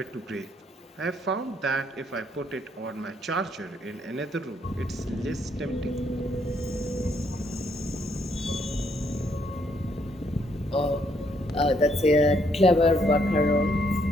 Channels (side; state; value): both; normal; correlation 0.71